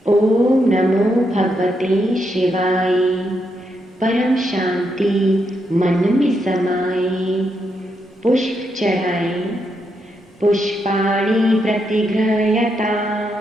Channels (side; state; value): both; normal; correlation 0.81